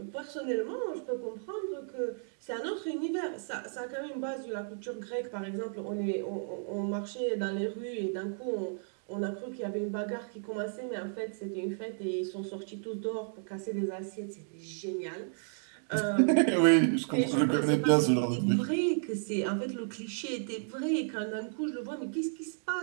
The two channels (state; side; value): silent; left; digital silence